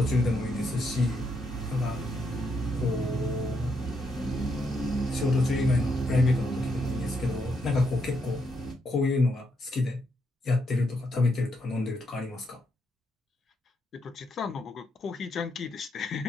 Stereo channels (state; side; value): normal; both; correlation 0.78